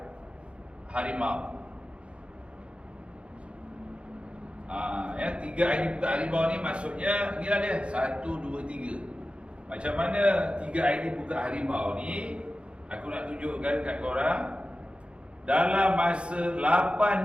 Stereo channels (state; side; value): late; left; 0.058 ms